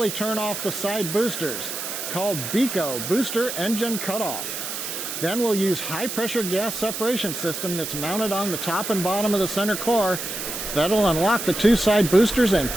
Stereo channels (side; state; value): right; noise; hiss, 5 dB below the sound